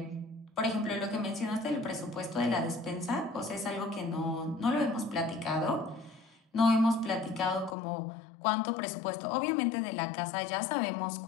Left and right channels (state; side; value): drops out; right; at 7.8 s